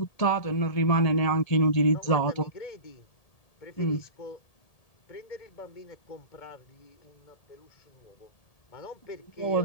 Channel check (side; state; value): right; late; 1.8 ms